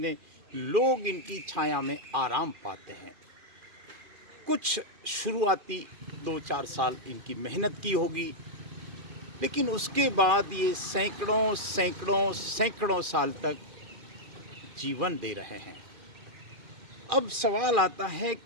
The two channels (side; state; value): left; late; 2.3 ms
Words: लोग इनकी छाया में आराम पाते हैं। कुछ शुरुआती 2-4 साल इनकी मेहनत की होगी, लेकिन उसके बाद ये सैकड़ों साल तक जीवन दे रहे हैं। अब सवाल आता है